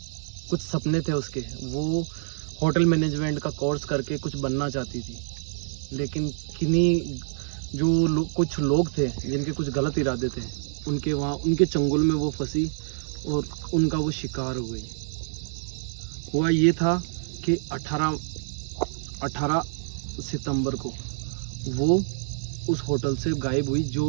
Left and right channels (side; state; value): left; silent; 60 dB below the other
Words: कुछ सपने थे उसके, वो होटल मैनेजमेंट का कोर्स करके कुछ बनना चाहती थी, लेकिन किन्हीं जो कुछ लोग थे जिनके कुछ गलत इरादे थे, उनके वहाँ उनके चंगुल में वो फंसी और उनका वो शिकार हो गई। हुआ ये था कि 18 सितंबर को वो उस होटल से गायब हुई।